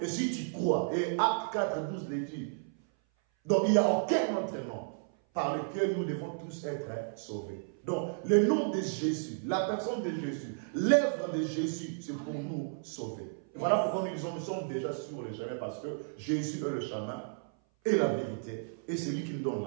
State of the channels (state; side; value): silent; left; 56 dB below the other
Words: si tu crois, et Acte 4, 12 le dit, donc il n'y a aucun autre nom par lequel nous devons tous être sauvés. Donc le nom de Jésus, la personne de Jésus, l'œuvre de Jésus, c'est pour nous sauver. Et voilà pourquoi nous disons nous sommes déjà sur le chemin parce que Jésus est le chemin et la vérité et c'est lui qui nous donne